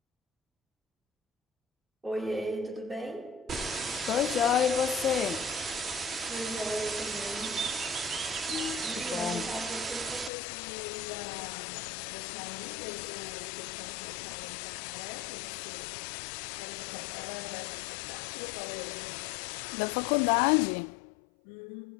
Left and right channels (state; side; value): drops out; right; at 10.3 s